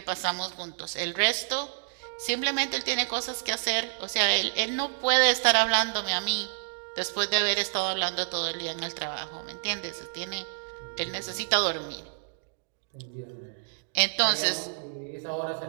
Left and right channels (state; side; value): silent; left; digital silence